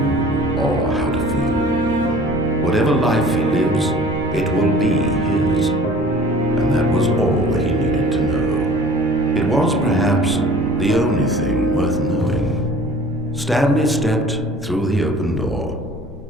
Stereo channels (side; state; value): both; normal; correlation 0.47